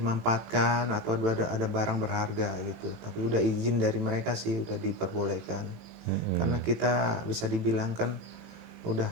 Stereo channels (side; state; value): left; late; 18 ms